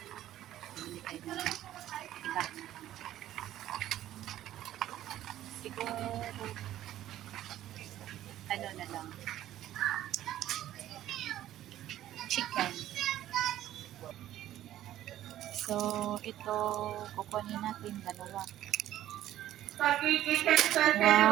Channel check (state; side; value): quieter; left; 13.0 dB